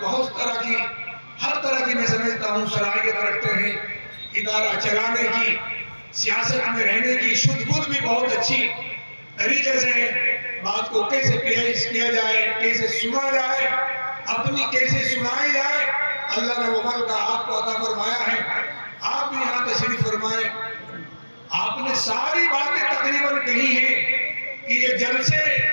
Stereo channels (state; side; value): inverted; both; correlation -1.00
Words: بہت طرح کی، ہر طرح کی میں سمجھتا ہوں صلاحیت رکھتے ہیں. ادارہ چلانے کی، سیاست میں رہنے کی شدھ بدھ بھی بہت اچھی طریقے سے بات کو کیسے پیش کیا جائے، کیسے سنا جائے، اپنی کیسے سنائی جائے، اللہ نے وہ موقع آپ کو عطا فرمایا ہے. آپ بھی یہاں تشریف فرمائیں. آپ نے ساری باتیں تقریباً کہی ہیں کہ یہ جلسے